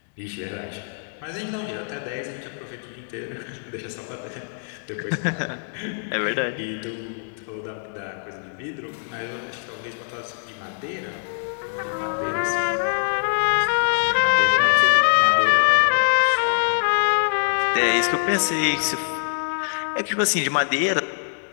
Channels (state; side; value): silent; right; digital silence